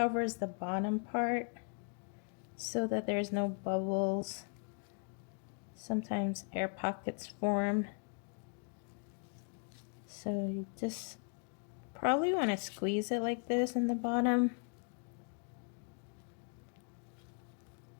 the bottom part so that there's no bubbles. Sometimes air pockets form. So you just probably want to squeeze it like this in the bottom.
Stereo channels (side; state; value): right; quieter; 38.8 dB